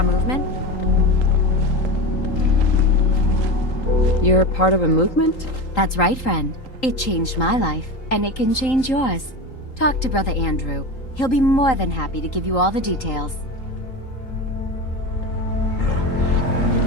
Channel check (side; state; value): right; late; 3.8 ms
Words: movement? You're part of a movement? That's right, friend. It changed my life, and it can change yours. Talk to Brother Andrew. He'll be more than happy to give you all the details.